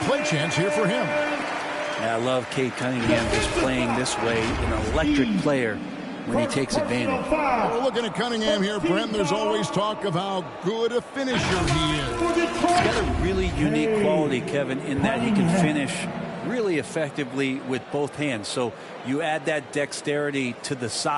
play chance here for him. Yeah, I love Cade Cunningham just playing this way, an electric player when he takes advantage. Well, looking at Cunningham here, Brent, there's always talk of how good a finisher he is. He's got a really unique quality, Kevin, in that he can finish really effectively with both hands. So you add that dexterity to the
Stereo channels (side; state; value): both; identical; correlation 1.00